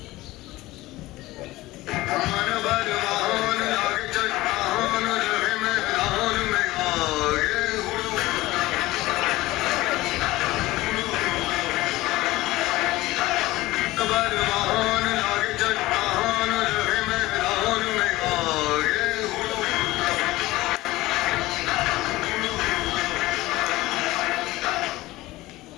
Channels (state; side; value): quieter; right; 18.3 dB